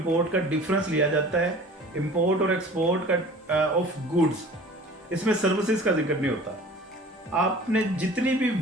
का डिफरेंस लिया जाता है, इंपोर्ट और एक्सपोर्ट का ऑफ गुड्स। इसमें सर्विसेज का जिक्र नहीं होता। आपने जितनी भी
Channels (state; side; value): normal; both; correlation 0.44